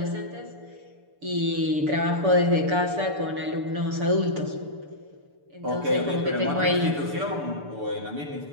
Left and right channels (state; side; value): late; left; 6.9 ms